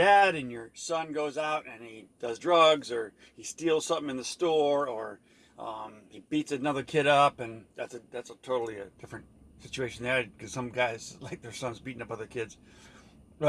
and your son goes out and he does drugs, or he steals something in the store, or he beats another kid up, and that's a totally a different situation there, because some guys like their sons beating up other kids.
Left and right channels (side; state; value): both; identical; correlation 1.00